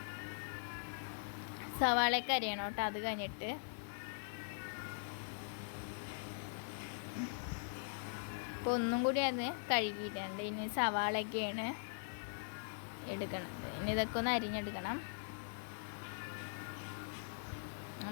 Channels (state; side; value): silent; right; digital silence